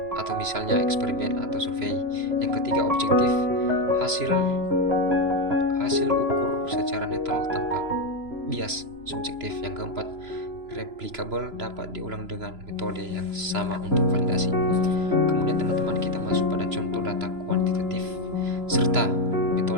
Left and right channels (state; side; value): late; left; 3.0 ms